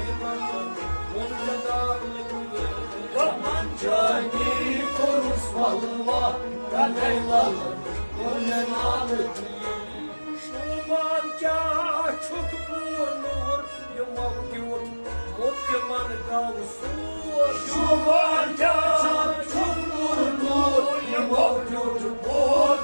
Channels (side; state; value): both; inverted; correlation -1.00